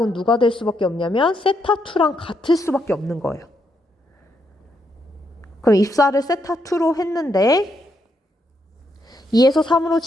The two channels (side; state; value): both; normal; correlation 0.78